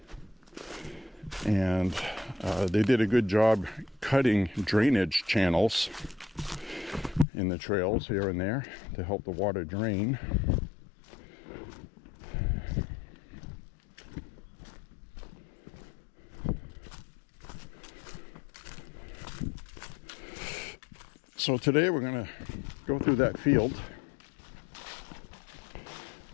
And they did a good job cutting drainage channels in the trails here and there to help the water drain. So today we're going to go through that field.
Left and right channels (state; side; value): drops out; right; at 7.2 s